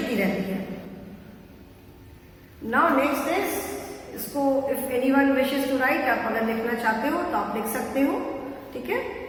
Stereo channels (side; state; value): both; identical; correlation 1.00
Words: रहती है. नाउ नेक्स्ट इज इसको if anyone wishes to write, आप अगर लिखना चाहते हो तो आप लिख सकते हो. ठीक है,